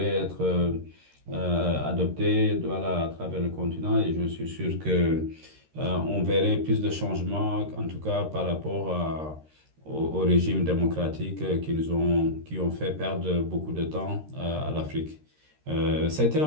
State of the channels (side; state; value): left; late; 13 ms